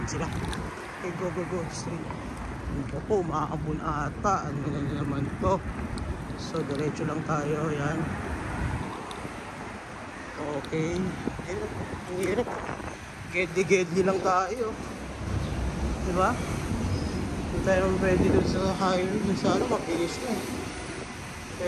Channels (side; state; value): both; identical; correlation 1.00